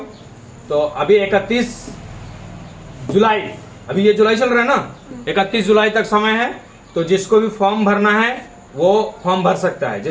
तो अभी 31 जुलाई, अभी ये जुलाई चल रहा है ना, 31 जुलाई तक समय है। तो जिसको भी फॉर्म भरना है वो फॉर्म भर सकता है।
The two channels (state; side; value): identical; both; correlation 1.00